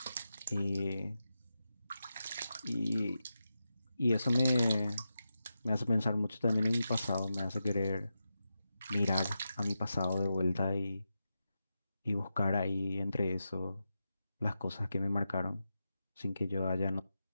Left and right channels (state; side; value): inverted; both; correlation -0.89